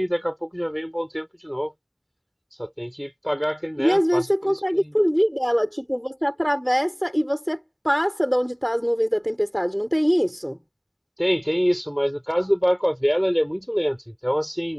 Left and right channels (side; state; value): both; identical; correlation 1.00